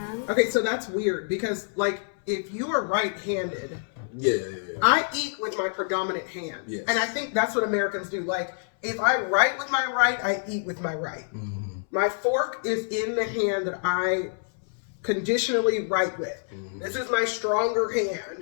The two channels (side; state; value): right; silent; 60 dB below the other